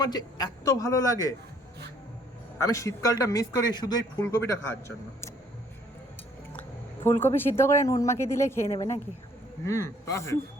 যে এত ভালো লাগে, আমি শীতকালটা মিস করি শুধু এই ফুলকপিটা খাওয়ার জন্য। ফুলকপি সিদ্ধ করে নুন মাখিয়ে দিলে খেয়ে নেবে নাকি? পারফেক্ট।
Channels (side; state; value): both; normal; correlation 0.62